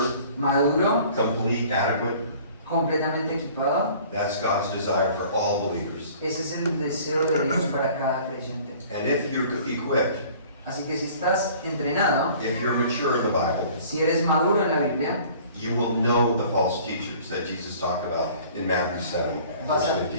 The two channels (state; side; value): inverted; both; correlation -0.50